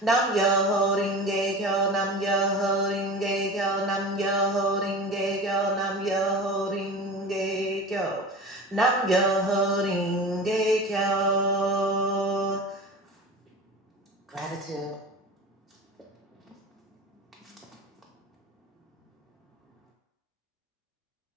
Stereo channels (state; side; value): normal; both; correlation 0.33